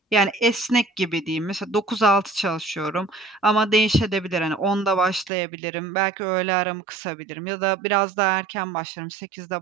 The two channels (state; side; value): drops out; left; at 5.3 s